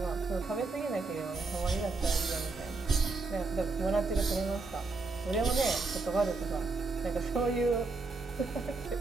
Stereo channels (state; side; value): quieter; left; 3.7 dB